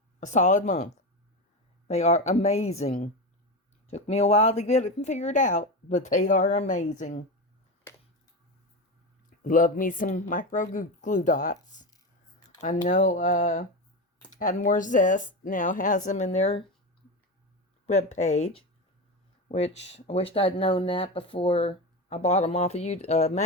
a solid month. They are amazing. Took me a while to get it figured out, but they are amazing. Love me some micro glue dots. I know Add More Zest now has them in their webpage, which I wished I'd known that before I bought them off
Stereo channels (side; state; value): both; normal; correlation 0.19